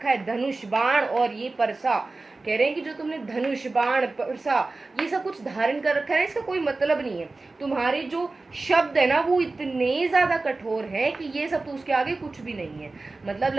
है, धनुष बाण और ये परसा, कह रहे हैं कि जो तुमने धनुष बाण परसा ये सब कुछ धारण कर रखा है, इसका कोई मतलब नहीं है। तुम्हारे जो शब्द है ना वो इतने ज्यादा कठोर हैं कि ये सब तो उसके आगे कुछ भी नहीं है। मतलब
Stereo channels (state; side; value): quieter; left; 3.4 dB